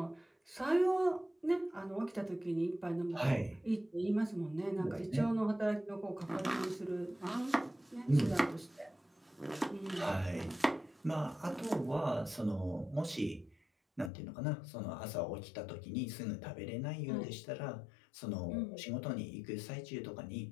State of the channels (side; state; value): right; drops out; at 14.1 s